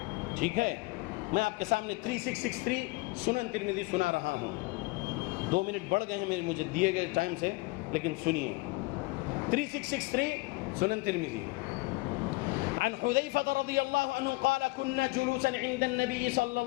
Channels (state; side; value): quieter; right; 23.6 dB